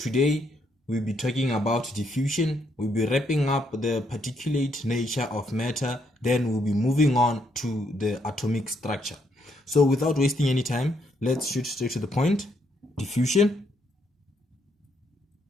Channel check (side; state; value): both; normal; correlation 0.74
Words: we'll be talking about diffusion. We'll be wrapping up the particulate nature of matter, then we'll be moving on to the atomic structure. So without wasting any time, let's shoot straight to the point. Diffusion.